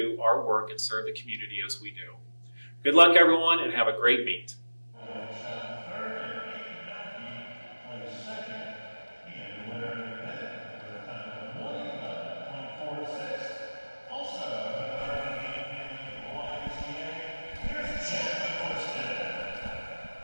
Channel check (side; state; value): both; inverted; correlation -1.00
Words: our work and serve the community as we do. Good luck, everyone, and have a great meet.